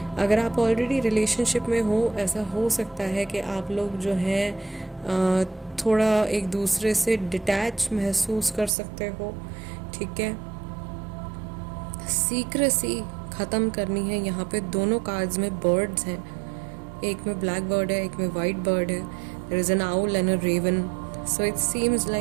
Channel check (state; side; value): drops out; left; at 8.7 s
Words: अगर आप ऑलरेडी रिलेशनशिप में हो, ऐसा हो सकता है कि आप लोग जो हैं थोड़ा एक दूसरे से डिटैच महसूस कर सकते हो, ठीक है। सीक्रेसी ख़त्म करनी है। यहाँ पे दोनों कार्ड्स में बर्ड्स हैं, एक में ब्लैक बर्ड है, एक में वाइट बर्ड है। There is an owl and a raven. So it seems